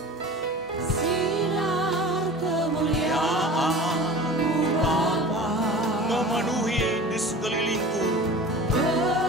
Memenuhi di sekelilingku,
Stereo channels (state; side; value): normal; both; correlation 0.38